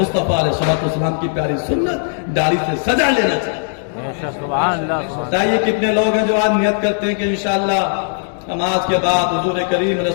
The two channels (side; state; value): right; silent; 68 dB below the other